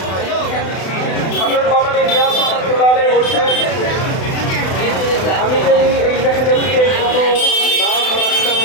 হযরত মাওলানা ইলিয়াস রহমাতুল্লাহ আলাইহি বলছেন আমি যদি এই মেহনতকে কোনো নাম রাখতাম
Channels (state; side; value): late; right; 32 ms